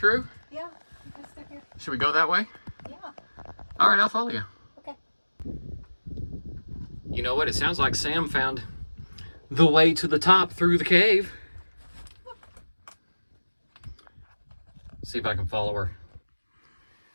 Yeah. It goes through here. Should we go that way? Yeah. All right, I'll follow you. Okay. You know what? It sounds like Sam found the way to the top through the cave. See if I can follow her.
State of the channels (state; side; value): inverted; both; correlation -1.00